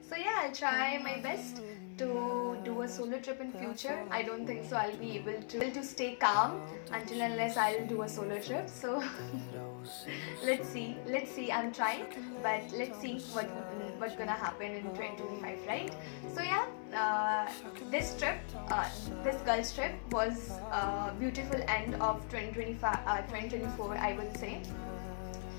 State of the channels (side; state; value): right; silent; 52 dB below the other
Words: So yeah, I'll try my best to do a solo trip in future. I don't think so I'll be able to stay calm until unless I'll do a solo trip. So let's see. I'm trying, but let's see what's gonna happen in 2025, right? So yeah, this trip, this girls trip was a beautiful end of 2024, I would say,